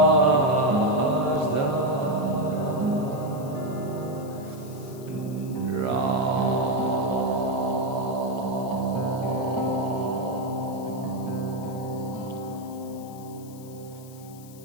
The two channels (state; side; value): noise; left; hiss, 21 dB below the sound